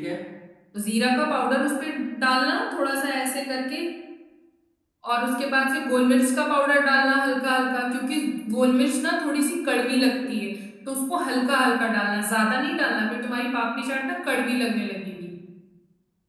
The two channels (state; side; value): identical; both; correlation 1.00